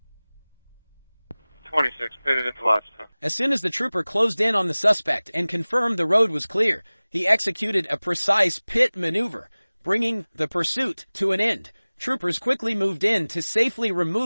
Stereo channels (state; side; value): inverted; both; correlation -1.00